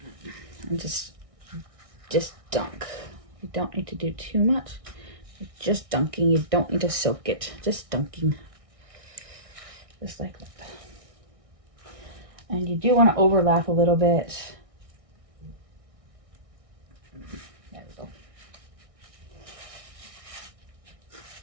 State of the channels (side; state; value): left; late; 1.6 ms